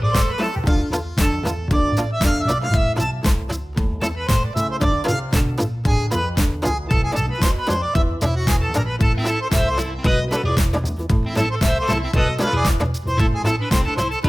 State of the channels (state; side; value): normal; both; correlation 0.98